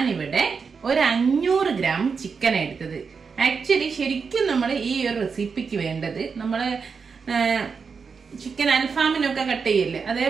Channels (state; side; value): quieter; left; 5.5 dB